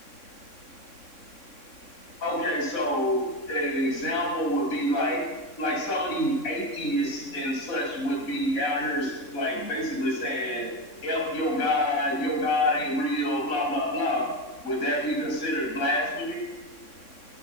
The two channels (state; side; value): late; right; 3.6 ms